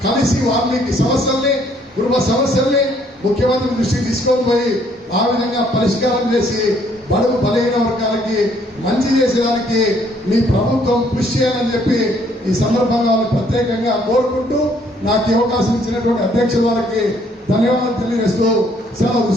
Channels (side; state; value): both; normal; correlation 0.65